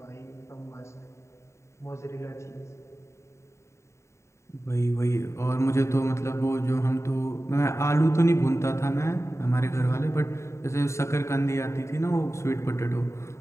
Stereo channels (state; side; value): late; right; 0.14 ms